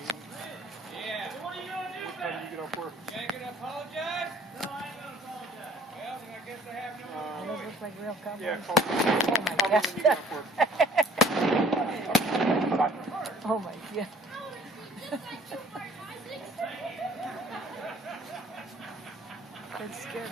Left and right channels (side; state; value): both; normal; correlation 0.58